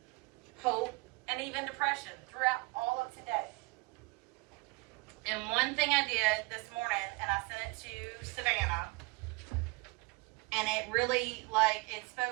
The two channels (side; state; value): left; quieter; 26.9 dB